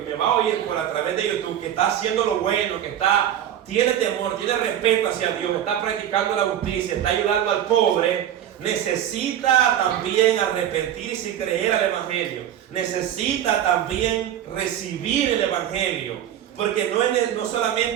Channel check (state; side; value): quieter; left; 10.7 dB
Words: me va a oír por a través de YouTube que está haciendo lo bueno, que tiene temor, tiene respeto hacia Dios, está practicando la justicia, está ayudando al pobre, necesita también arrepentirse y creer al evangelio. Necesita también recibir el evangelio. Porque no